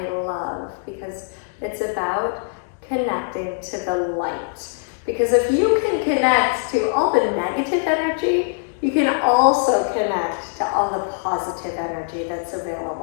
love because it's about connecting to the light. Because if you can connect to all the negative energy, you can also connect to all the positive energy that's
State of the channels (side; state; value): right; silent; digital silence